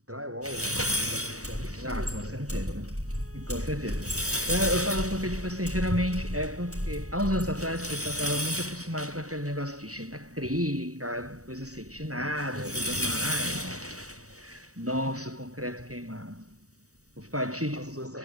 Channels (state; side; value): late; left; 0.66 ms